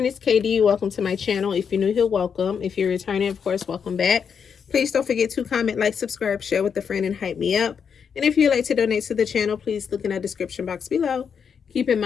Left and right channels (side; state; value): right; quieter; 6.9 dB